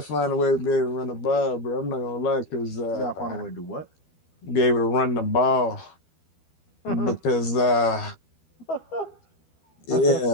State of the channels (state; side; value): late; right; 12 ms